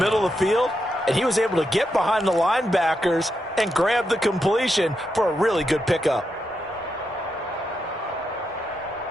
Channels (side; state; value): both; normal; correlation 0.84